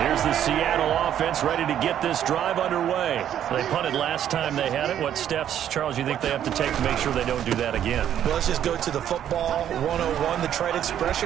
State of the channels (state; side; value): quieter; left; 10.3 dB